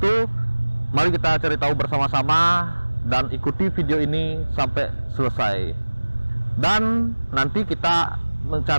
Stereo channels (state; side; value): inverted; both; correlation -1.00